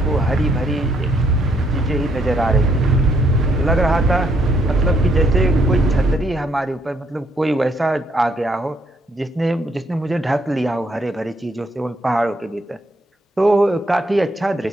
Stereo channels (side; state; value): both; normal; correlation 0.71